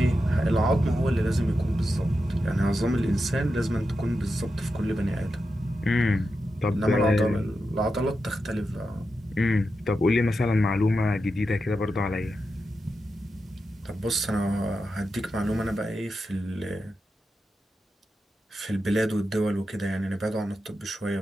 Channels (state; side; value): normal; both; correlation 0.89